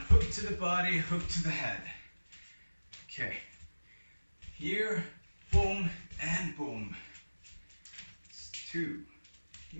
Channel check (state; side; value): inverted; both; correlation -1.00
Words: hook to the body, hook to the head. Okay, here, boom, and boom. It's 2,